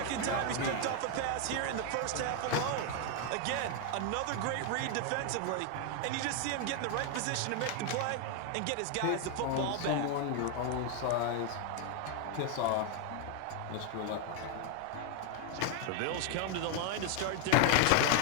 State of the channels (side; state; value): both; different; correlation 0.00